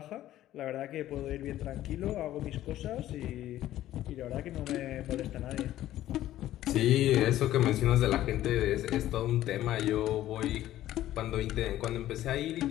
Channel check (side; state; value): right; quieter; 13.7 dB